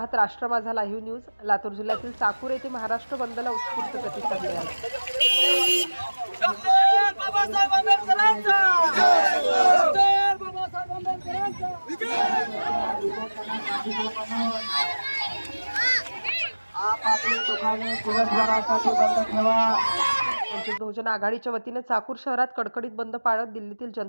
राष्ट्र माझा लाईव्ह न्यूज। लातूर जिल्ह्यातील चाकूर येथे महाराष्ट्र बंदला उत्स्फूर्त प्रतिसाद मिळाला। डॉक्टर बाबासाहेब आंबेडकरांचा डॉक्टर बाबासाहेब आंबेडकरांचा आपली दुकाने दिवसभरासाठी बंद ठेवा। वंचित बहुजन आघाडीच्या वतीने चाकूर शहरात कडकडीत बंद पाळत दिल्लीतील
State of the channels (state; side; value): inverted; both; correlation -1.00